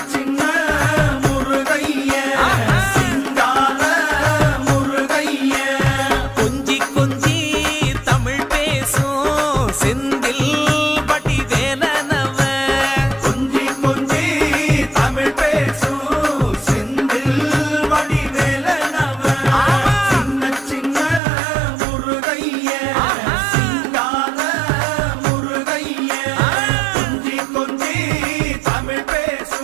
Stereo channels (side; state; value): left; drops out; at 21.2 s